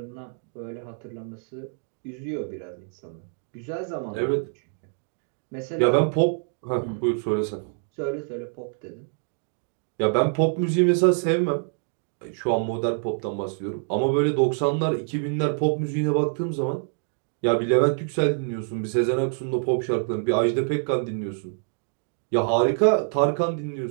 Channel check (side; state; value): left; silent; 61 dB below the other